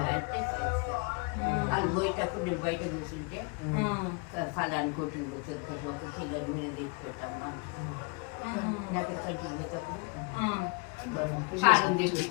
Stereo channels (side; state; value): right; quieter; 33.4 dB